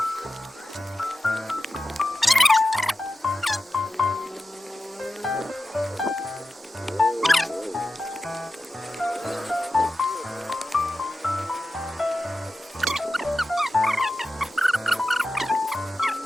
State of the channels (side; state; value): both; normal; correlation 0.93